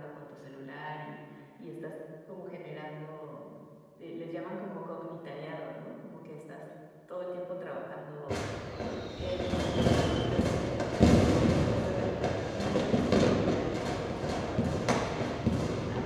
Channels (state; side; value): identical; both; correlation 1.00